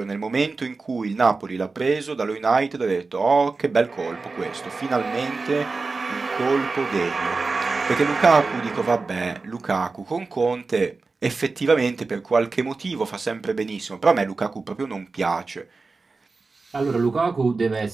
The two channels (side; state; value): left; quieter; 4.0 dB